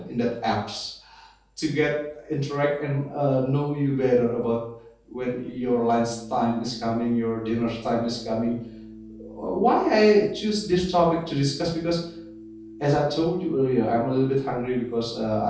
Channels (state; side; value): identical; both; correlation 1.00